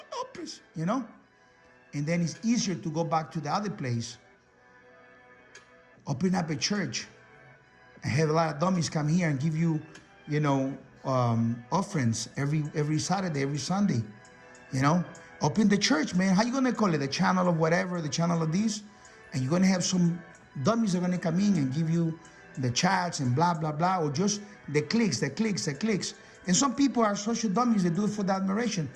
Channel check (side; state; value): both; identical; correlation 1.00